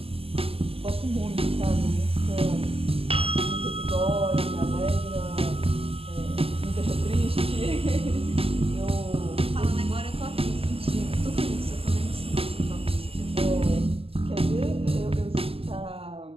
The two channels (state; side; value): late; left; 0.28 ms